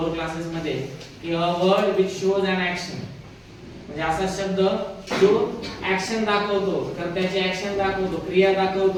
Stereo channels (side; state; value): both; identical; correlation 1.00